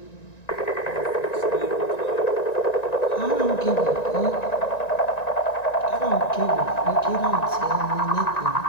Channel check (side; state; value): right; late; 1.9 ms